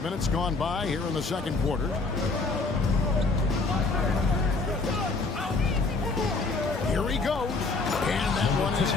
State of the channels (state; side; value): quieter; right; 3.8 dB